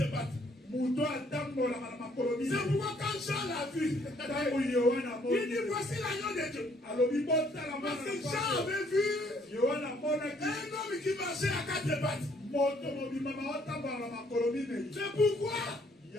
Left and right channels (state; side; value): normal; both; correlation 0.65